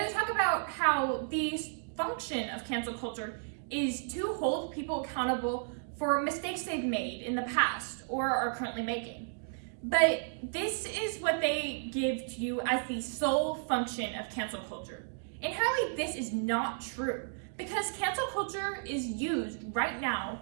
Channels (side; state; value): left; silent; digital silence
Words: they talk about how the function of cancel culture is to hold people accountable for mistakes they've made in the past or are currently making. But this is what they give to you as the sole function of cancel culture. Inherently, this is not true, because cancel culture is used right now